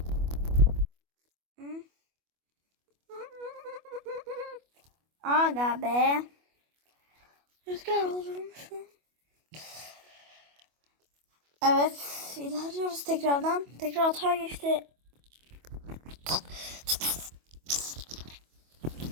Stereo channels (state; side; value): late; left; 25 ms